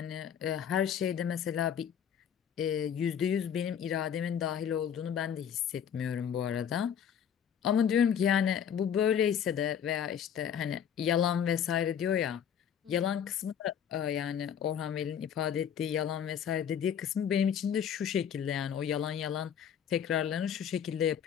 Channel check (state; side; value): quieter; right; 8.5 dB